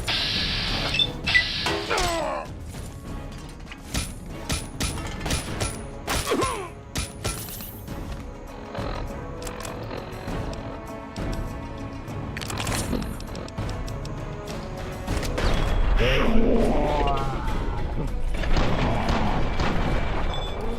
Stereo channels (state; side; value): identical; both; correlation 1.00